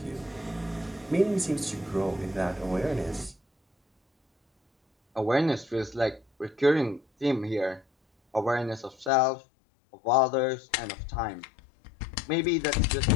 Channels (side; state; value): right; drops out; at 9.1 s